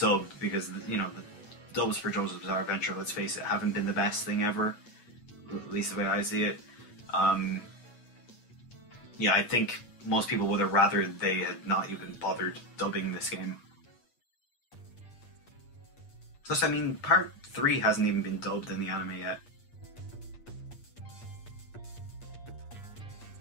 because, you know, the dubs for JoJo's Bizarre Adventure, let's face it, haven't been the best thing ever, at least the way I see it. Yeah, I think most people would have rather they had not even bothered dubbing this game. Plus, I mean, part 3 hasn't even been dubbed in the anime yet.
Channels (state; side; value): late; right; 8.5 ms